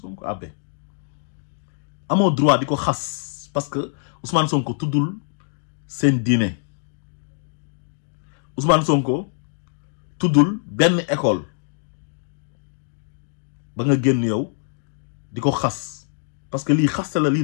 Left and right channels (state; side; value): silent; right; digital silence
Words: Sonko abbé amoo droit di ko xas parce que Ousmane Sonko tuddul seen diine Ousmane Sonko tuddul benn école ba nga génn yow di ko xas parce que lii xaste la lii